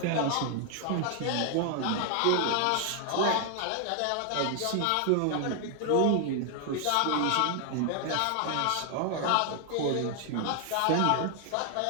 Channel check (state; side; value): different; both; correlation 0.00